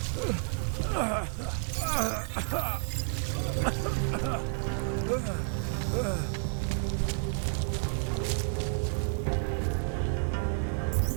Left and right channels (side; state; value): left; silent; 57 dB below the other